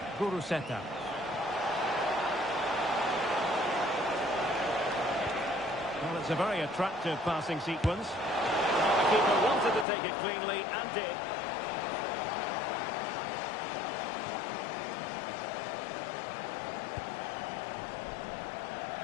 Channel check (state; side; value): drops out; right; at 9.9 s